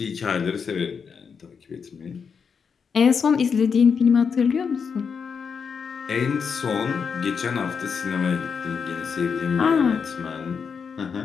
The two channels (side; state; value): right; quieter; 6.1 dB